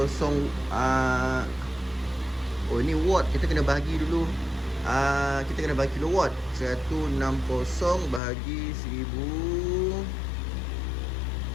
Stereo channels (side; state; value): right; drops out; at 8.2 s